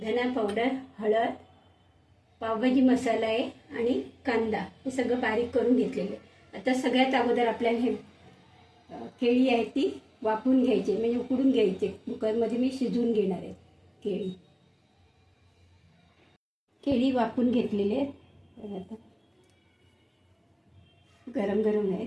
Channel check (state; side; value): identical; both; correlation 1.00